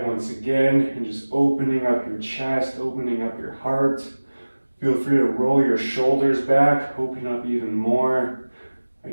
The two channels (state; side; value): inverted; both; correlation -1.00